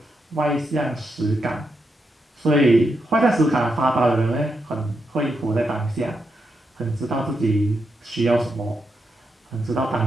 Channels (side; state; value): both; normal; correlation 0.84